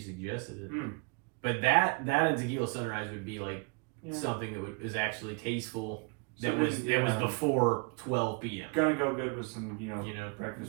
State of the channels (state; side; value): quieter; left; 34.0 dB